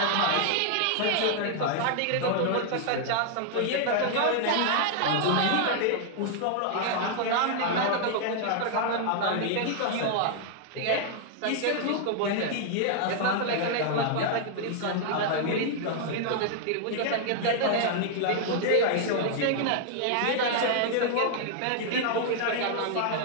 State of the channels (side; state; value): both; different; correlation 0.00